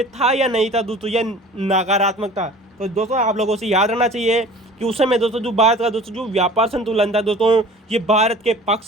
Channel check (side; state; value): both; normal; correlation 0.44